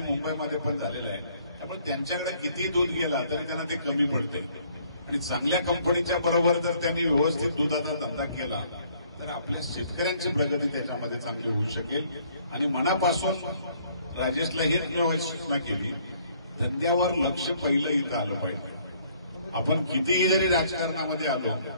मुंबईमध्ये पण झालेलं आहे, त्यामुळे त्यांच्याकडे किती दूध गेला तरी त्यांना ते कमी पडते आणि चांगल्या कंपनीच्या बरोबर जर त्यांनी व्यवस्थित दुधाचा धंदा केला तर आपल्या शेतकऱ्यांची प्रगती त्याच्यामध्ये चांगली होऊ शकेल। आणि मनापासून राजेशला हीच सूचना केली, धंद्यावर लक्ष पहिलं इथं आलं पाहिजे। आपण कितीही जरी राजकारणामध्ये आलो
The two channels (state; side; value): inverted; both; correlation -0.63